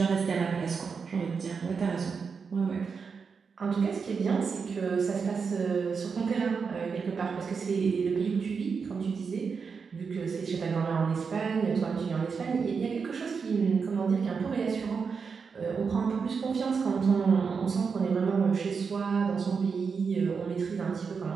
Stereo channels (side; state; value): left; quieter; 5.6 dB